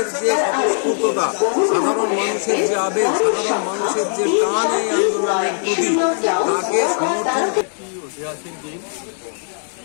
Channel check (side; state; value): right; silent; digital silence